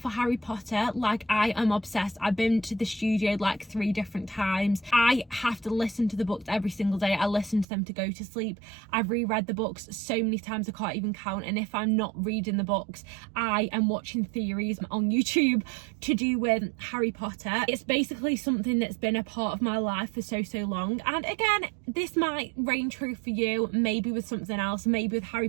Harry Potter. Like, I am obsessed. I've been to the studio like 3 different times. I have to listen to the books every single day. I listen to them to go to sleep. I've reread the books so many times I can't even count, and if I'm not reading the books, I am watching theories on YouTube to do with Harry Potter. It's basically something that's been a part of my life for so long. And again, this might reign true for you, maybe with something else, maybe with Harry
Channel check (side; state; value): left; drops out; at 7.7 s